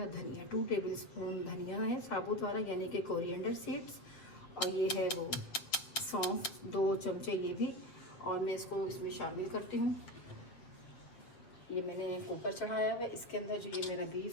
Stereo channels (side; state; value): right; late; 7.9 ms